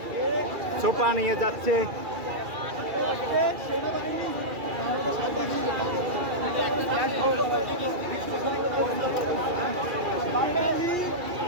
সোফা নিয়ে যাচ্ছে।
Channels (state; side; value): late; left; 2.3 ms